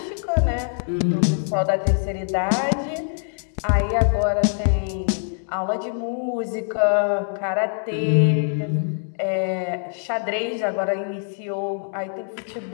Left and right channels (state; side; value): silent; right; digital silence